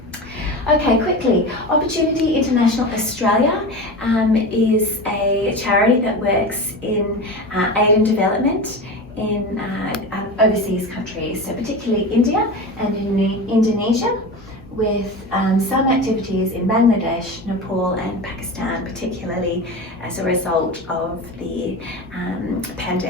Okay, quickly, Opportunity International Australia is a charity that works in aid and development in overseas countries, so particularly India and in Indonesia, with some activities in Bangladesh, Nepal and Pakistan, particularly as a result of the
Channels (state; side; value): normal; both; correlation 0.27